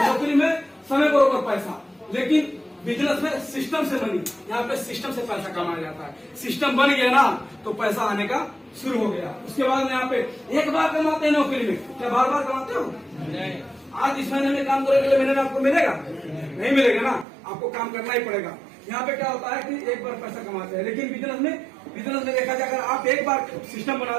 नौकरी में समय बरोबर पैसा, लेकिन बिजनेस में सिस्टम से बनी, यहाँ पे सिस्टम से पैसा कमाया जाता है। सिस्टम बन गया ना तो पैसा आने का शुरू हो गया। उसके बाद में यहाँ पे एक बार कमाते हैं नौकरी में, क्या बार बार कमाते हो? नहीं। आज इस महीने में काम करोगे, अगले महीने में आपको मिलेगा? नहीं मिलेगा ना, आपको काम करना ही पड़ेगा। यहाँ पे क्या होता है कि एक बार पैसा कमाते हैं, लेकिन बिजनेस में देखा जाए, अगर आप एक बार सिस्टम बना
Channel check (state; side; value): drops out; left; at 17.2 s